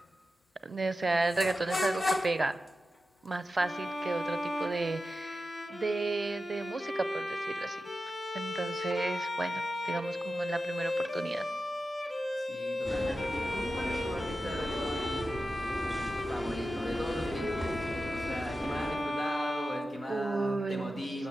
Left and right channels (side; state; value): both; normal; correlation 0.92